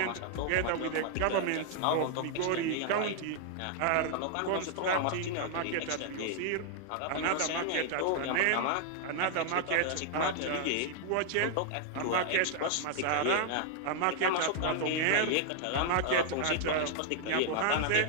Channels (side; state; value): both; different; correlation -0.01